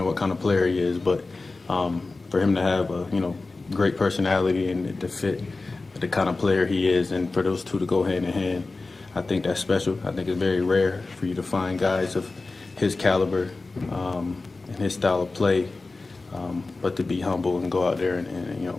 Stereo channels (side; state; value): right; quieter; 3.5 dB